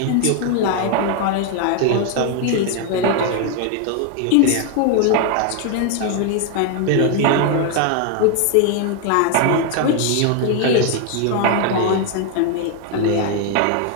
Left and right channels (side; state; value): both; different; correlation 0.01